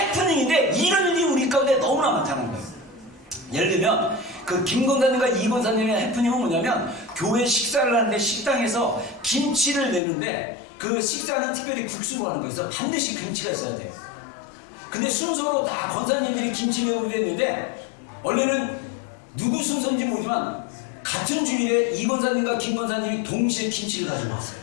이런 일이 우리 가운데 너무나 많다는 거예요. 예를 들면 그 김 권사님과 이 권사님의 해프닝은 뭐냐면 교회 식사를 하는데 식당에서 김치를 내는데 그 식사는 특별히 국수로 하는 거여서 반드시 김치가 있어야 돼요. 근데 순서로 다 권사님들이 김치 내고 그랬는데 원래는 누구 순서인지 모르지만 같은 주일에 이 권사님과 김 권사님이 동시에 김치를 가지고 왔어요.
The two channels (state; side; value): drops out; right; at 10.0 s